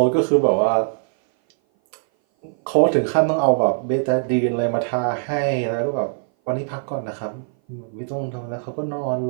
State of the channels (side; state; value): left; silent; 58 dB below the other